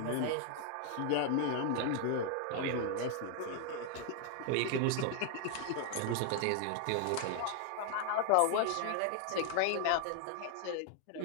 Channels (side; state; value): both; different; correlation 0.00